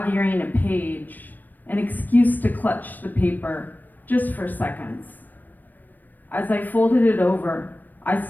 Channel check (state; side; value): late; right; 0.088 ms